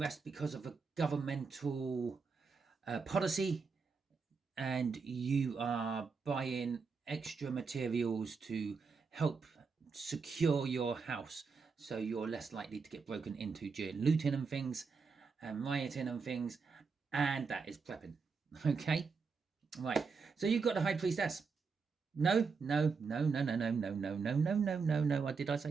because of a governmental policy, and you are buying extra materials to help secure your house so you're less likely to get broken into during looting and things and rioting and things, and that is prepping. Okay, right, so you've got the High Priestess. No. Did I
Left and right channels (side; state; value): left; quieter; 5.0 dB